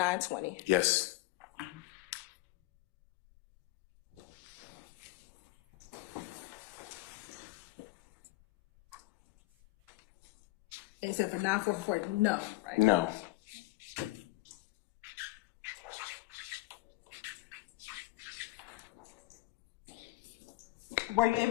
Yes. Except for 944, no, right? No. Were you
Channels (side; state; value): right; quieter; 18.3 dB